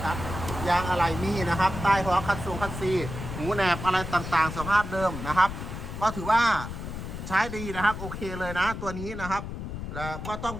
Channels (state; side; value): noise; left; rumble, 7 dB below the sound